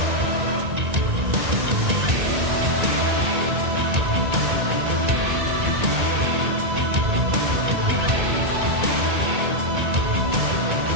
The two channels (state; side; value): late; left; 1.9 ms